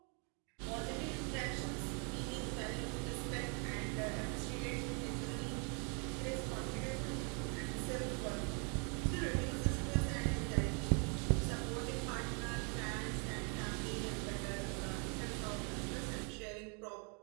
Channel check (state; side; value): quieter; left; 37.0 dB